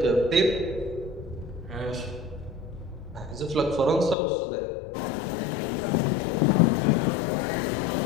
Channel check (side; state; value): right; drops out; at 4.2 s